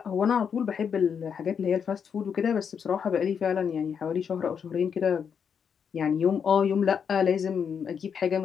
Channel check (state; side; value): quieter; right; 7.1 dB